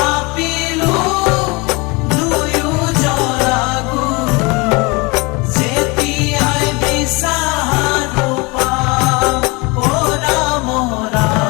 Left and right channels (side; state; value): right; quieter; 26.7 dB